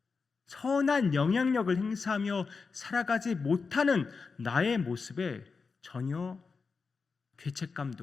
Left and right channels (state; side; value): quieter; right; 4.8 dB